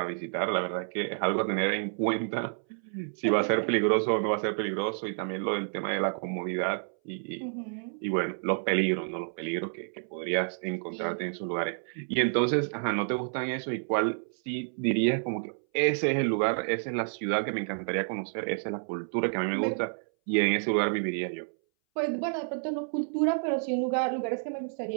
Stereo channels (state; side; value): silent; left; 58 dB below the other